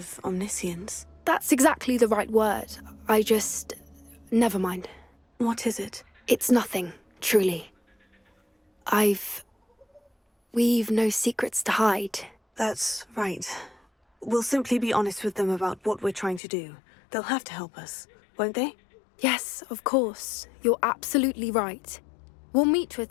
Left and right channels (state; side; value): drops out; right; at 16.4 s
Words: omniscience. That's exactly the right word. Never mind. What is it? It's nothing, truly. We've no secrets to hide. That's right. We'll simply be honest with them about what we're trying to do. They'll have to help us, won't they? Yes, of course. You're absolutely right. We'll meet with